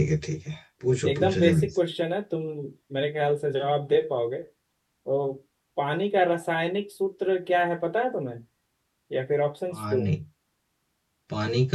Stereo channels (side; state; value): both; identical; correlation 1.00